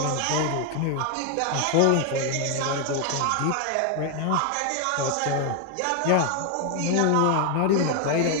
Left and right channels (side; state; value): both; different; correlation 0.01